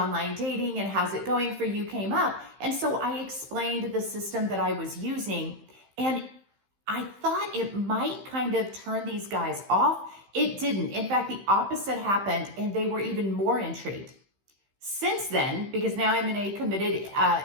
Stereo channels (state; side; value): late; left; 15 ms